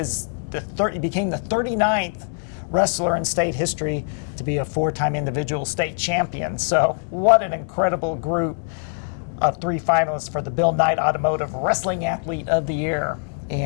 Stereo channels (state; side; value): silent; right; digital silence